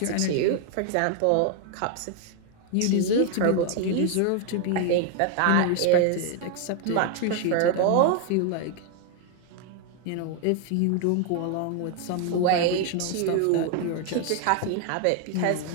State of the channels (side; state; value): both; different; correlation 0.00